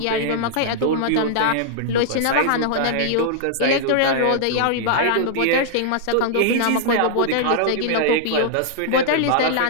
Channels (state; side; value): different; both; correlation -0.01